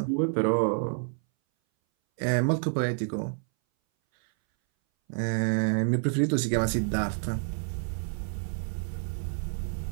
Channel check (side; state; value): left; silent; 59 dB below the other